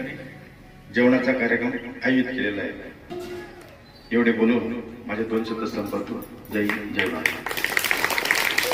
जेवणाचा कार्यक्रम आयोजित केलेला आहे. एवढे बोलून माझे 2 शब्द संपवतो. जय हिंद, जय महाराष्ट्र.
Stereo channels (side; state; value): both; identical; correlation 1.00